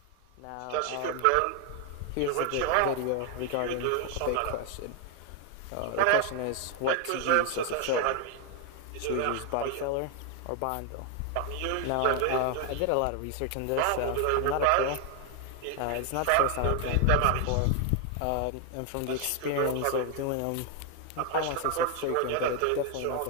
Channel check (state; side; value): different; both; correlation 0.01